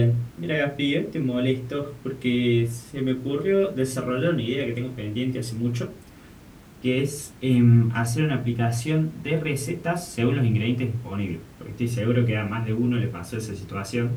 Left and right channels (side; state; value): both; identical; correlation 1.00